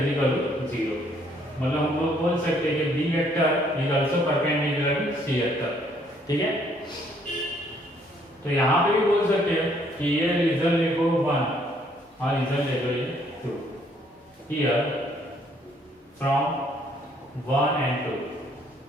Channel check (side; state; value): both; normal; correlation 0.66